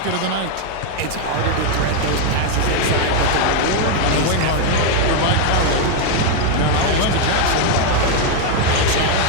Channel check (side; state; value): both; different; correlation 0.01